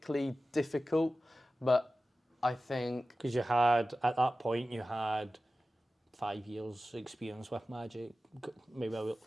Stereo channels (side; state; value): both; normal; correlation 0.95